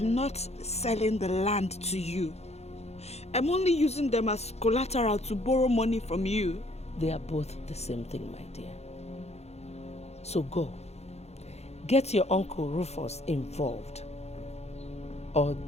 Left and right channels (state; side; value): late; right; 0.31 ms